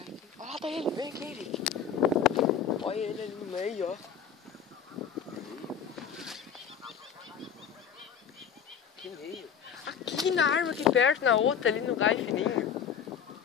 aqui. Olha lá, tá ele, vem aqui, Henrique. Olha ele ali no meio, ó. Que meio. Aqui na árvore, aqui perto, na outra, ali no galho fininho.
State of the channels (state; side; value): quieter; right; 7.6 dB